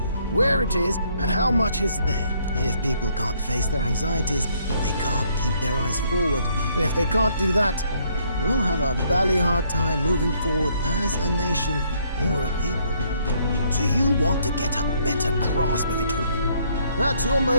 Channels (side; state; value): both; inverted; correlation -0.68